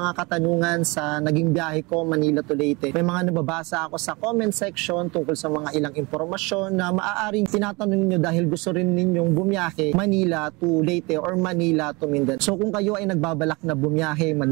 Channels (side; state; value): left; quieter; 26.2 dB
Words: katanungan sa naging biyahe ko Manila to Leyte. May mga nababasa ako sa comment section tungkol sa mga ilang impormasyon na maaaring tinatanong niyo dahil gusto rin ninyong bumiyahe Manila to Leyte or Manila to Mindanao. So kung kayo ay nagbabalak na bumiyahe